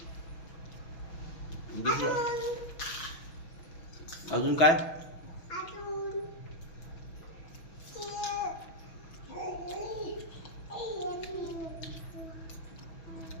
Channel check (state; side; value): late; right; 6.1 ms